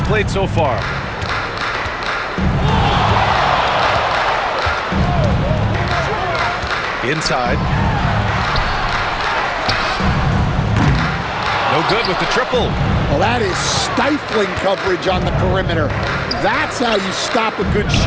played so far. Inside. No good with the triple. Well, that is stifling coverage on the perimeter. That's how you stop a good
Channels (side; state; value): both; identical; correlation 1.00